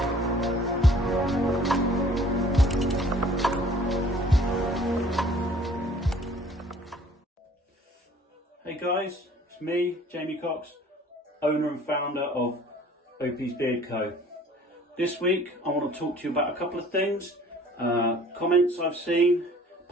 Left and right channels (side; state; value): both; normal; correlation 0.53